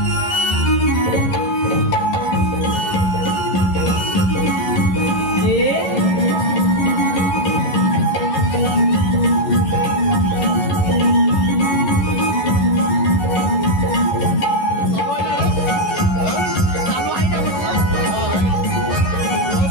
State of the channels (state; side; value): late; right; 11 ms